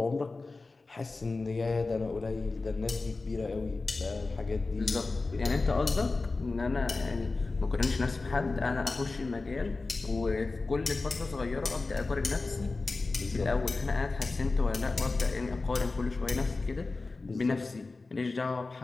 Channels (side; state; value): right; quieter; 3.6 dB